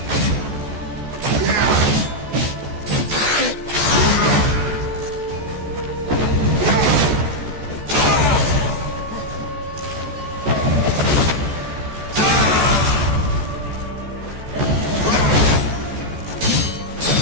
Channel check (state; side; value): late; left; 14 ms